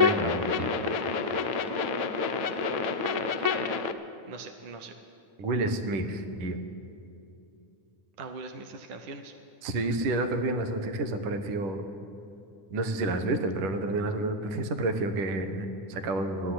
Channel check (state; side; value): late; left; 10 ms